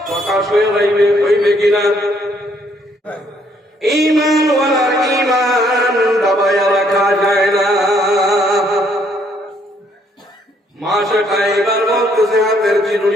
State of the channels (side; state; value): both; normal; correlation 0.67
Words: প্রকাশ হয়ে হইবে কিনা ঈমান ওয়ালার ঈমান দাবায়া রাখা যায় না মাসে এবার বলতেছে হাতের